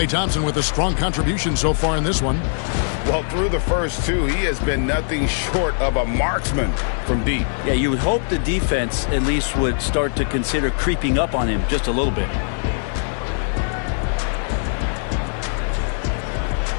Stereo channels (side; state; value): right; silent; digital silence